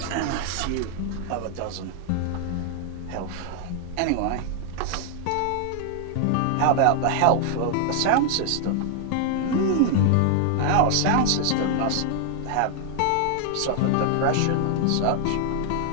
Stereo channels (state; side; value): different; both; correlation 0.00